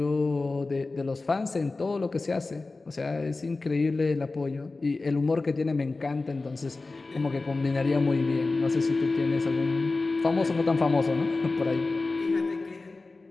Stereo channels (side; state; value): right; quieter; 3.5 dB